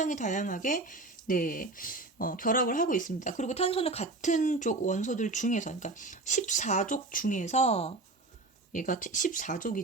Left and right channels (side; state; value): left; quieter; 3.2 dB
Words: 다양하게 네, 결합을 하고 있습니다. 그리고 탄소는 같은 쪽 원소들 중에서, 그러니까 14족 중에서 얘가